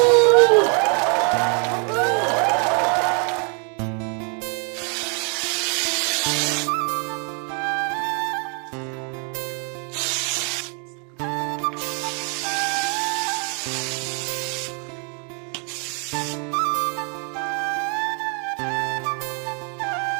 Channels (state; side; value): quieter; left; 37.8 dB